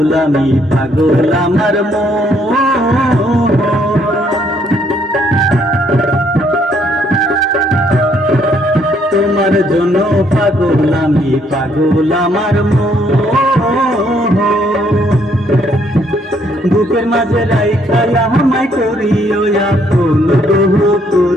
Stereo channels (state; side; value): normal; both; correlation 0.69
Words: আমি, পাগল আমার মন। তোমার জন্য পাগল আমি, পাগল আমার মন। বুকের মাঝে রাইখা আমায় করিও আপন, বহু